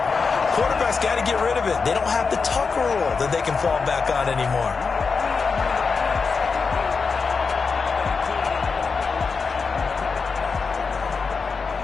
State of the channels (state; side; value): quieter; right; 5.0 dB